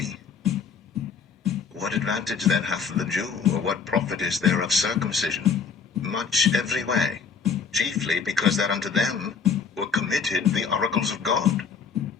What advantage then hath the Jew, or what profit is there of circumcision? Much every way, chiefly because that unto them were committed the oracles of God.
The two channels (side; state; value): right; quieter; 5.9 dB